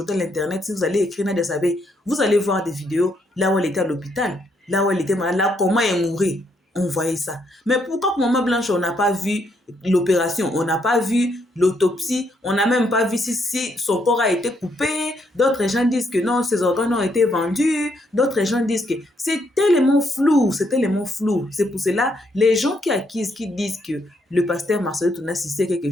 à l'internet. Si vous allez écrire Nadia Sabé, vous allez voir des vidéos là où elle était à l'hôpital, là où elle était malade, là comment elle mourait. On voyait ça. Mais pourquoi pour Maman Blanche, on n'a pas vu l'opération, on n'a pas vu l'autopsie, on n'a même pas vu si son corps a été coupé. D'autres gens disent que non, ses organes ont été vendus. D'autres gens disent que c'est tellement flou, c'est tellement flou. C'est pour cela, les gens qui accusent, qui disent que le pasteur Marcelo Tounassi sait quelque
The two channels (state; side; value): normal; both; correlation 0.74